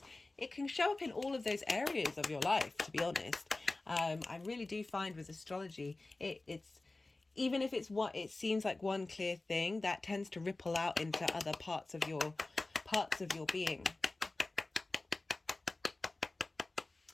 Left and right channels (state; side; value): quieter; right; 3.1 dB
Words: it can show up in all of those areas of your life, to be honest. I really do find with astrology, it's even if it's what it seems like one clear thing, that tends to ripple out into other parts of your being.